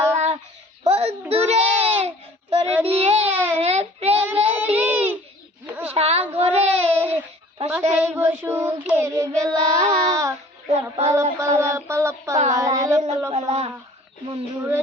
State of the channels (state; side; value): normal; both; correlation 0.50